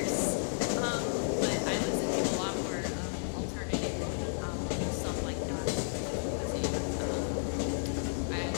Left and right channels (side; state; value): right; silent; digital silence